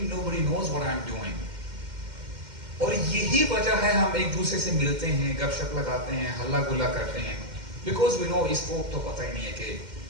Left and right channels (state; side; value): late; left; 2.1 ms